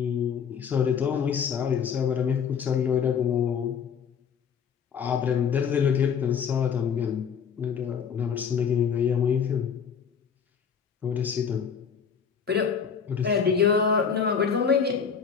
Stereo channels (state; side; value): quieter; right; 7.0 dB